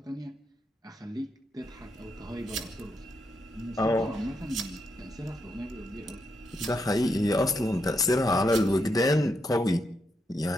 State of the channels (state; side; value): normal; both; correlation 0.81